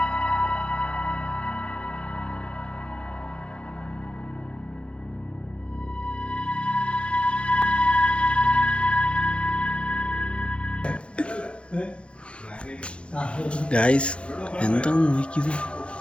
ഗായ്സ്, എന്താന്ന് നോക്കിയത്?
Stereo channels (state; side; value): late; right; 0.059 ms